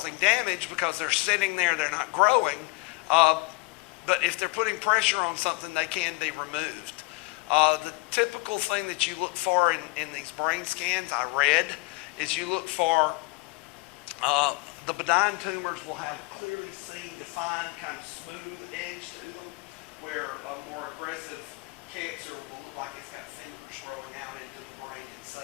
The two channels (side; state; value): right; quieter; 26.5 dB